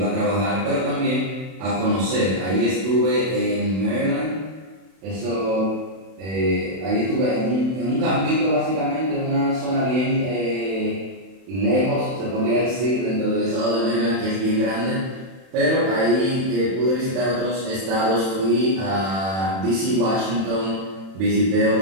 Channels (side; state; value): left; late; 31 ms